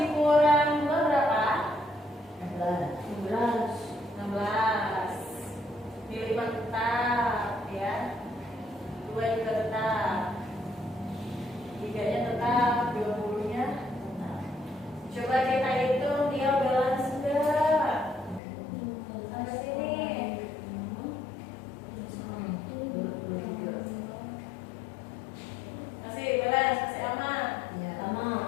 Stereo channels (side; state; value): right; drops out; at 18.4 s